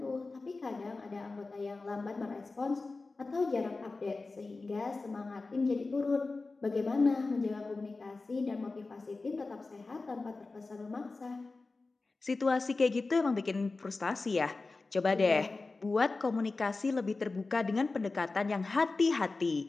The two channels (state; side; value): quieter; right; 3.7 dB